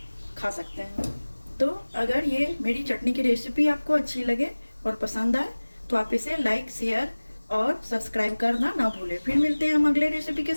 खा सकते हैं। तो अगर ये मेरी चटनी की रेसिपी आपको अच्छी लगे और पसंद आए तो आप इसे लाइक, शेयर और सब्सक्राइब करना ना भूलें। फिर मिलते हैं हम अगले रेसिपी के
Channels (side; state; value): both; inverted; correlation -1.00